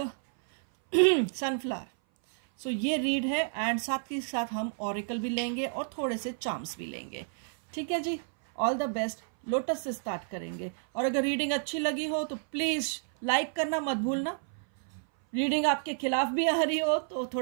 sunflower। ये रीड है एंड साथ ही साथ हम ऑरिकल भी लेंगे और थोड़े से चार्म्स भी लेंगे। ठीक है जी, ऑल द बेस्ट। लोटस से स्टार्ट करेंगे और अगर रीडिंग अच्छी लगी हो तो प्लीज लाइक करना मत भूलना। रीडिंग आपके खिलाफ भी आ रही हो तो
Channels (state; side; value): silent; left; 58 dB below the other